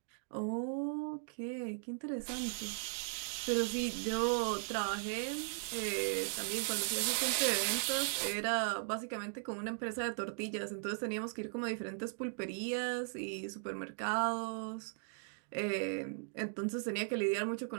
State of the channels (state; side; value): silent; left; digital silence